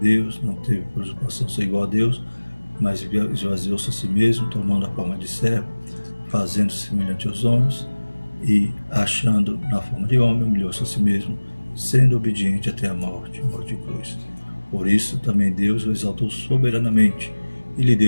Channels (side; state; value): both; inverted; correlation -1.00